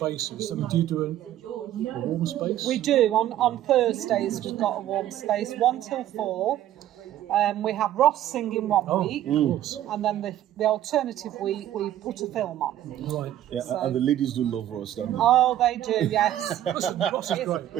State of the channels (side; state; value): left; quieter; 12.5 dB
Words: I mean, do you do a warm space? We do. On Thursdays, we've got a warm space, 1 till 4. We have Ross singing one week, Of course. and then the alternative week we put a film on. Right. Yeah, So- and the ladies do love Ross, don't they? Oh, they do, yes. Listen, Ross is great.